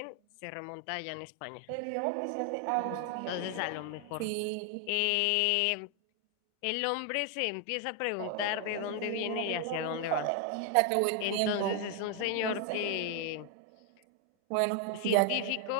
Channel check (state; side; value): different; both; correlation 0.01